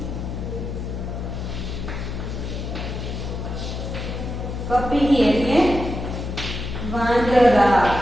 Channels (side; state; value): left; noise; hum, 5 dB below the sound